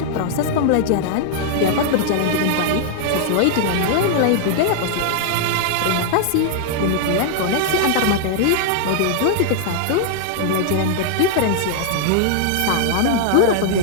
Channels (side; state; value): both; different; correlation 0.00